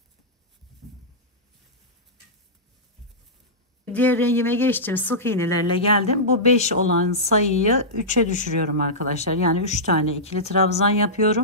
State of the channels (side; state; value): both; normal; correlation -0.13